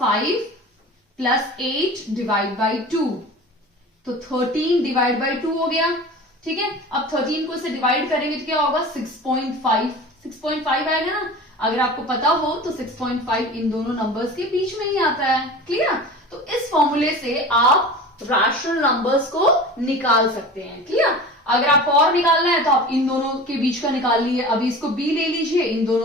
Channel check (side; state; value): both; normal; correlation 0.36